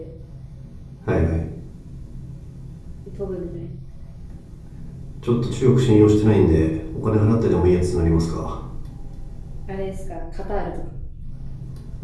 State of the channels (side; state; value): both; identical; correlation 1.00